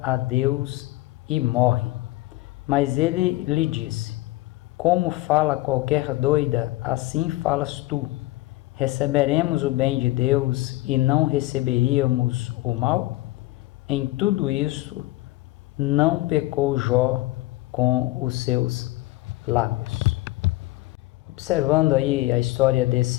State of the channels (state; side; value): quieter; right; 18.7 dB